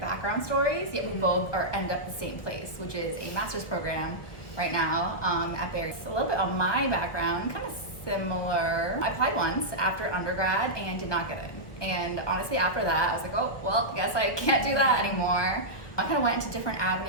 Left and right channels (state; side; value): late; right; 1.6 ms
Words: stories, yet we both end up the same place, which is a master's program right now at Barry. A little bit on my background, kind of similar. I applied once after undergrad and did not get in. And honestly, after that, I was like, oh, well, I guess I can't do that anymore. I kind of went into different